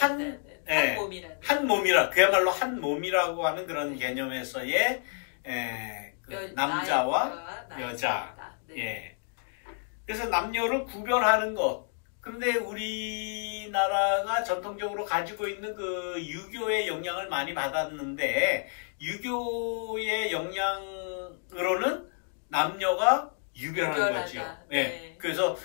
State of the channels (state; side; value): silent; right; 58 dB below the other